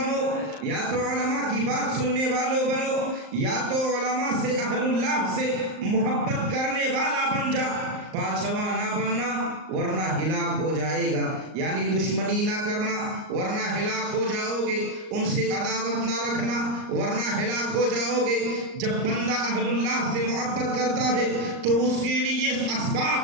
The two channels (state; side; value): late; left; 38 ms